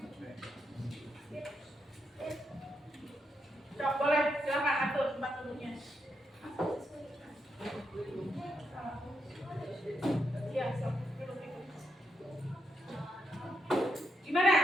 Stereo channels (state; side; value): normal; both; correlation 0.82